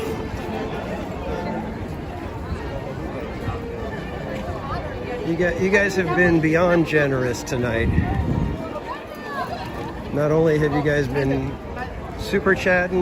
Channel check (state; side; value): identical; both; correlation 1.00